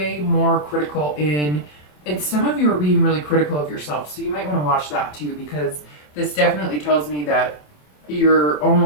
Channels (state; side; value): late; right; 27 ms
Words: more critical in, and some of you are being really critical of yourself. So you might want to watch that too, because this definitely tells me that you're